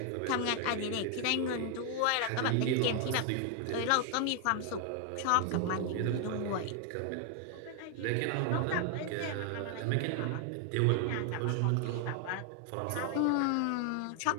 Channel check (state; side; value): different; both; correlation 0.00